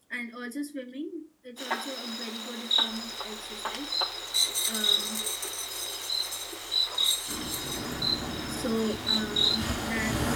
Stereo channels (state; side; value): identical; both; correlation 1.00